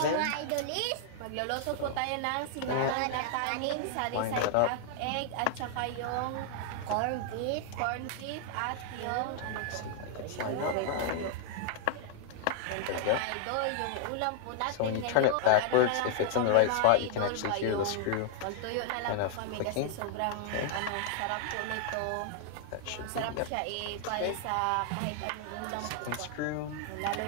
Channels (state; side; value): different; both; correlation 0.00